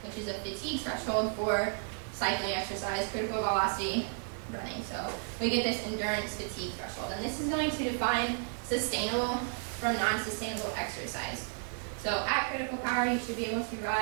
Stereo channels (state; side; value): silent; left; 56 dB below the other